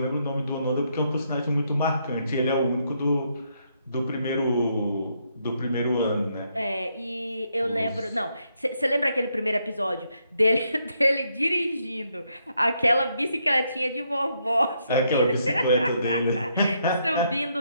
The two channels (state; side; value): inverted; both; correlation -0.76